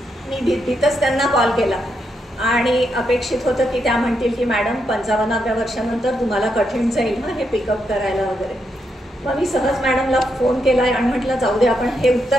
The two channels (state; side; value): normal; both; correlation 0.81